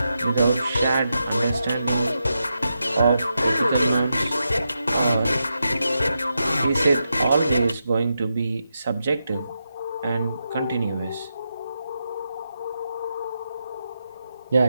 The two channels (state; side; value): inverted; both; correlation -0.86